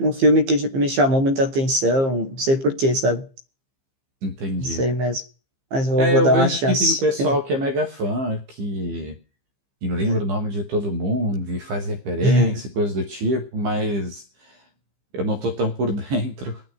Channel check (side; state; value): left; late; 15 ms